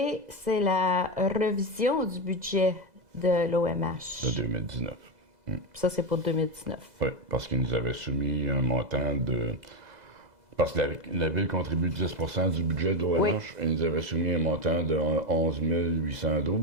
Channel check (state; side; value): late; left; 2.0 ms